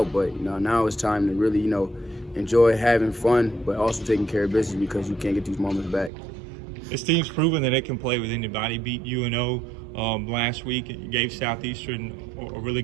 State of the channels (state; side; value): drops out; left; at 6.1 s